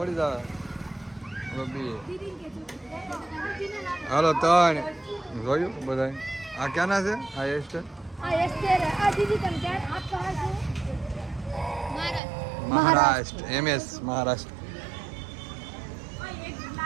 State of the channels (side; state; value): left; drops out; at 12.2 s